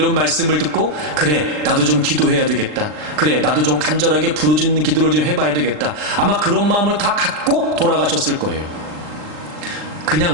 말씀을 듣고 그래 나도 좀 기도해야 되겠다, 그래 나도 좀 간절하게 부르짖는 기도를 좀 해봐야 되겠다, 아마 그런 마음을 다 갖고 돌아가셨을 거예요.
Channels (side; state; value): left; late; 39 ms